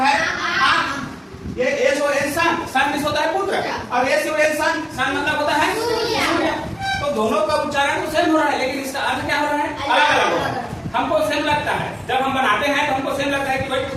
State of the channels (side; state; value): both; identical; correlation 1.00